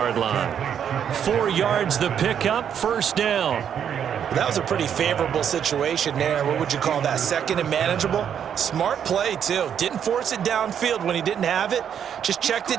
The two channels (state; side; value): quieter; left; 8.6 dB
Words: line. 4 yards the pickup. First down. That was a pretty favorable situation there. What would you call that? 2nd and manageable? Smart play, too. Didn't force it downfield when he didn't have it. Just checked